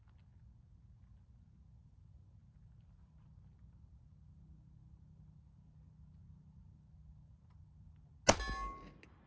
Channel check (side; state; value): both; identical; correlation 1.00